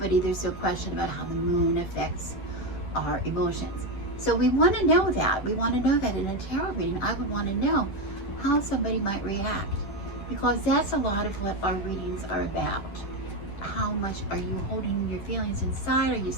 there's no question about how the moon affects our emotions. So we want to know that. We want to know that in a tarot reading. I would want to know how somebody might react, because that's a lot of what our readings are about. How much are you holding your feelings inside? Are you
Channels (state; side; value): late; right; 10 ms